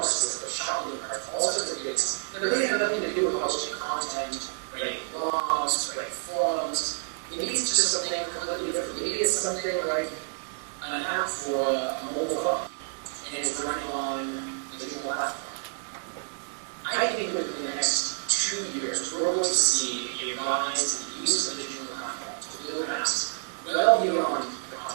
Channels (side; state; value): left; silent; digital silence